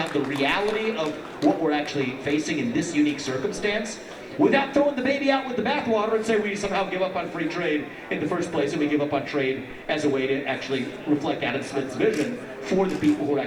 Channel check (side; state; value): both; identical; correlation 1.00